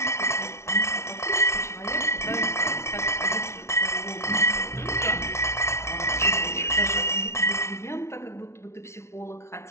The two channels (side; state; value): right; late; 0.13 ms